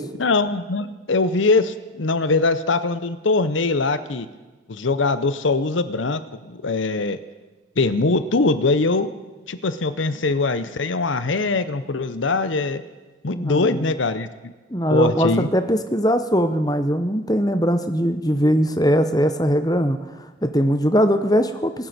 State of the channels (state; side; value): normal; both; correlation 0.37